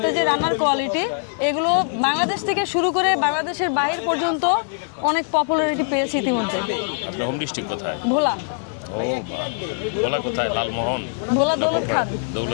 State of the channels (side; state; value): right; silent; 64 dB below the other